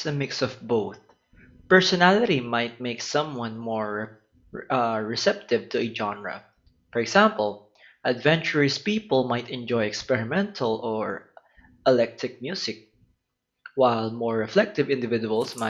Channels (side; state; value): both; identical; correlation 1.00